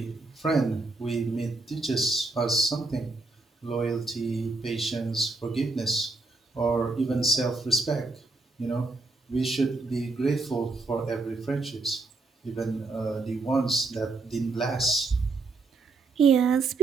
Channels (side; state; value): left; quieter; 3.5 dB